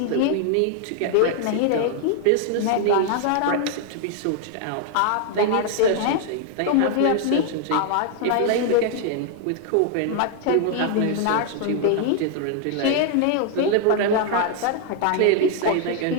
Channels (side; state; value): both; different; correlation 0.00